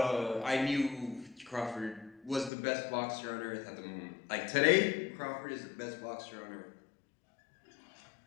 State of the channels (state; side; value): drops out; right; at 2.5 s